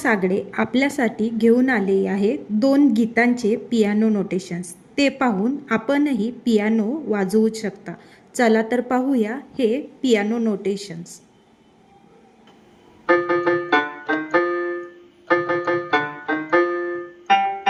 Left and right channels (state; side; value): identical; both; correlation 1.00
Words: आपल्यासाठी घेऊन आली आहे 2 गीतांचे पियानो नोटेशन्स। ते पाहून आपणही पियानो वाजवू शकता। चला तर पाहूया हे पियानो नोटेशन्स।